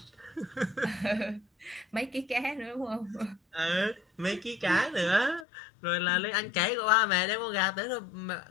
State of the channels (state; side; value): drops out; right; at 5.5 s